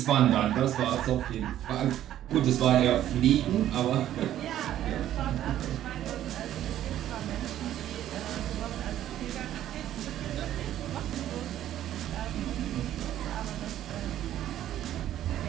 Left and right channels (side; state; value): left; quieter; 12.1 dB